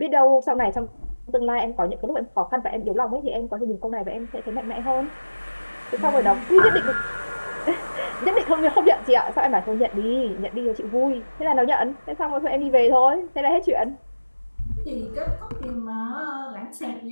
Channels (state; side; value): inverted; both; correlation -1.00